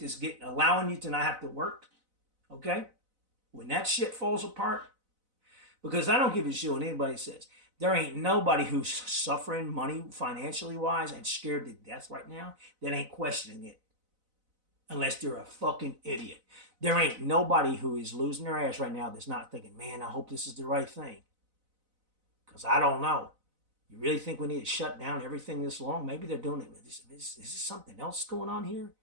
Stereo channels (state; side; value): late; left; 4.0 ms